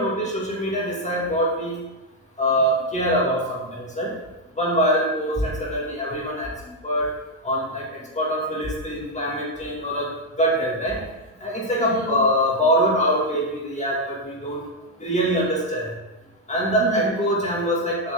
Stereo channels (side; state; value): both; normal; correlation 0.01